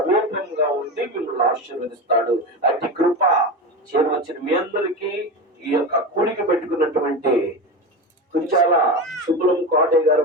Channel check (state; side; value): normal; both; correlation 0.22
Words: ఉండి మిమ్మల్ని ఆశీర్వదిస్తాడు. అట్టి కృప చేరవచ్చిన మీ అందరికీ ఈ యొక్క కూడిక పెట్టుకున్నటువంటి కుంచాల సుబ్బులం కోటయ్య గారు